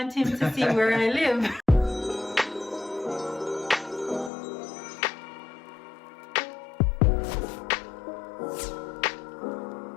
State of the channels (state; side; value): drops out; right; at 4.3 s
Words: him to see where I live.